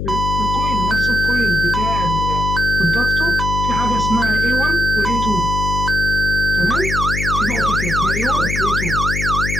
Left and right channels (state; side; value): noise; left; hum, 3 dB below the sound